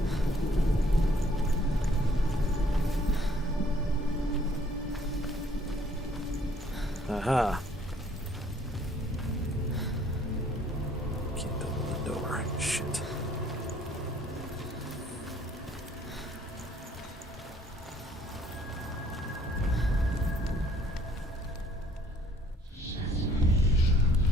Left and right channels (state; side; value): normal; both; correlation 0.62